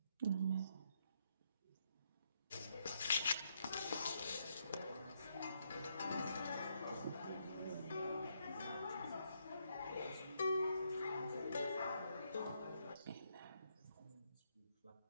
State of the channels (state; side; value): inverted; both; correlation -0.76